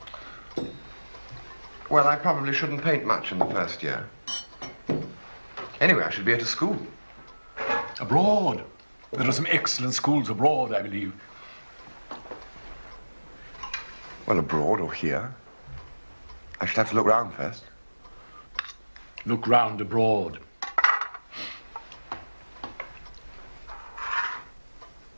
Well, I probably shouldn't paint much in the first year. Anyway, I should be at a school. Abroad. There are some excellent schools abroad, I believe. Well, abroad or here. I should have to look round first. Look round abroad.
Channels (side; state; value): both; inverted; correlation -1.00